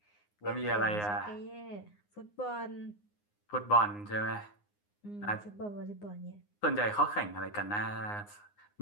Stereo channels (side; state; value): right; late; 9.7 ms